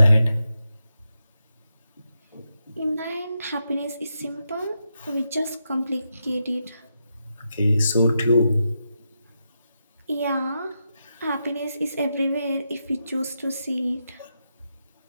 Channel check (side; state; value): both; inverted; correlation -0.86